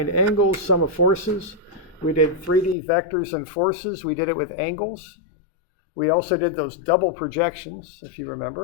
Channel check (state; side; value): drops out; right; at 2.8 s